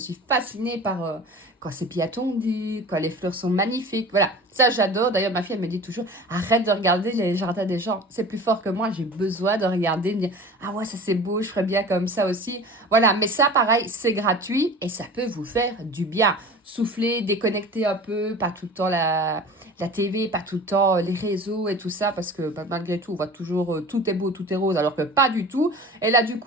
fascinée par quand c'est bien tondu, quand les fleurs sont magnifiques. Voilà, ça j'adore. D'ailleurs, ma fille, elle me dit toujours, arrête de regarder les jardins des gens. C'est plus fort que moi, j'ai besoin de regarder, de me dire, ah ouais, ça c'est beau, je ferais bien comme ça aussi. Voilà, mais ça, pareil, c'est gratuit et ça peut vous faire du bien. Souffler, déconnecter un peu, pas tout le temps la TV, pas tout le temps les réseaux et tout ça, parce que bah, malgré tout, on voit toujours tout est beau, tout est rose, alors que pas du tout. Et là, du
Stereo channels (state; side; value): normal; both; correlation 0.39